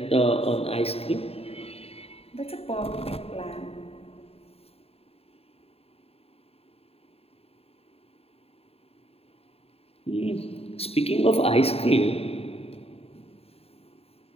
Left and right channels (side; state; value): right; late; 0.29 ms